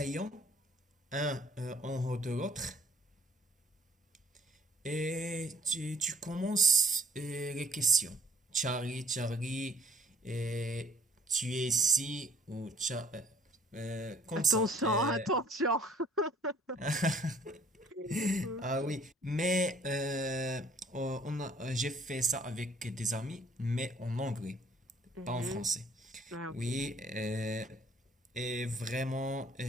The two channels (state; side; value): normal; both; correlation 0.57